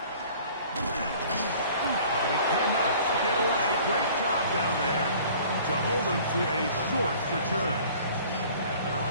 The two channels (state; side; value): inverted; both; correlation -0.50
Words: But he cannot get away. Great job down there to hold him to a short return.